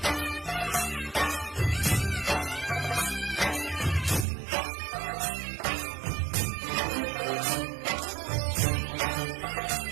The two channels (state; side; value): drops out; left; at 4.2 s